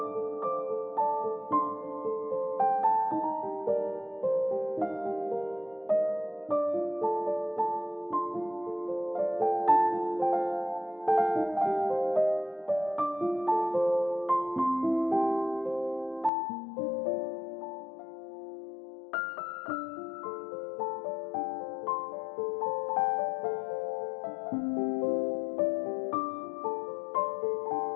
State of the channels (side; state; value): right; drops out; at 16.3 s